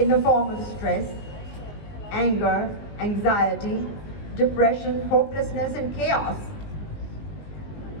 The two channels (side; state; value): right; late; 19 ms